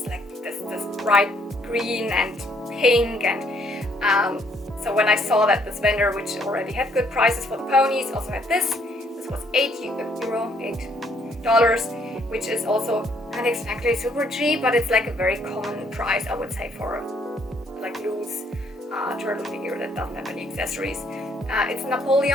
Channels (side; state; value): both; normal; correlation 0.67